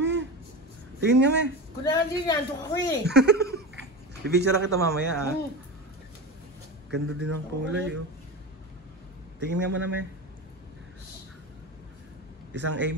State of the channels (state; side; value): normal; both; correlation 0.25